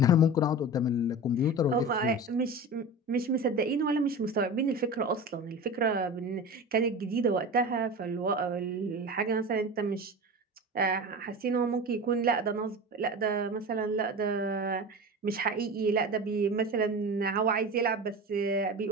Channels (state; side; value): normal; both; correlation 0.30